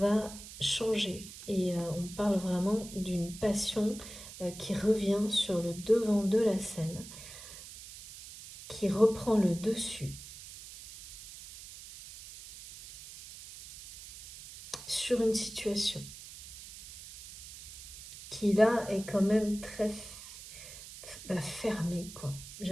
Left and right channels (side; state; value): right; noise; hiss, 14 dB below the sound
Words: changer. Et on parle vraiment d'une passion qui revient sur le devant de la scène, qui reprend le dessus sur une situation qui là est quand même très fermée, quoi.